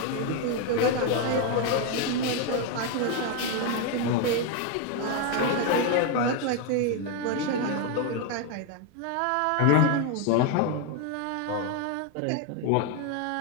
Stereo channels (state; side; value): different; both; correlation 0.01